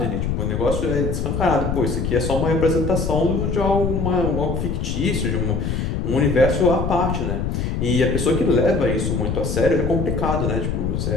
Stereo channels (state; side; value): noise; left; rumble, 2 dB below the sound